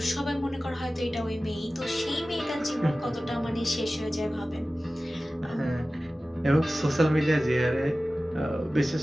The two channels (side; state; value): both; normal; correlation 0.96